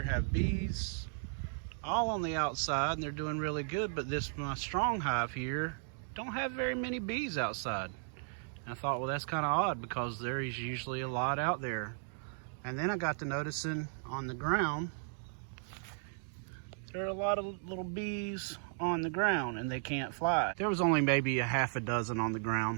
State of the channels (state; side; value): silent; left; digital silence